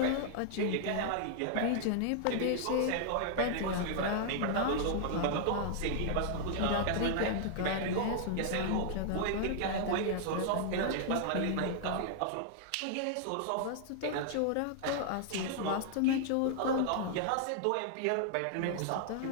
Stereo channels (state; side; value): different; both; correlation -0.01